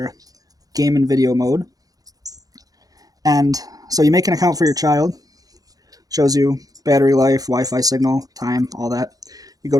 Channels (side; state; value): left; late; 0.18 ms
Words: game and video mode. And so you make an account for your child, shows you battery life, Wi-Fi signal, time, all that. You go